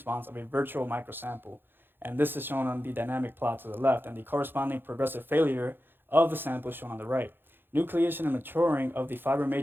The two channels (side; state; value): left; late; 0.10 ms